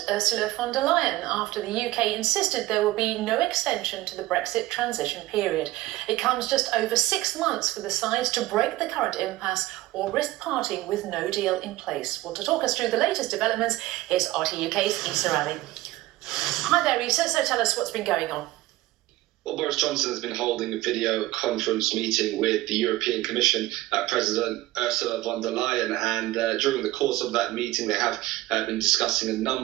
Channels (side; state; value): left; quieter; 17.5 dB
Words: Ursula von der Leyen after the UK insisted there will be no extension to the Brexit transition period. It comes just over 6 months for the sides to break the current impasse or risk parting with no deal in place. Well, to talk us through the latest developments, here's RT UK's Issa Ali. Hi there, Issa. So tell us what's been going on. Well, Boris Johnson has been holding a video conference meeting with the European Commission President Ursula von der Leyen, and during the course of that meeting they have been discussing a